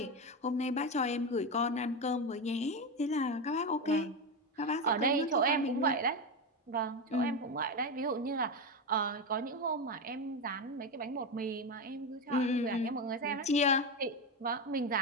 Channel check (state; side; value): normal; both; correlation 0.14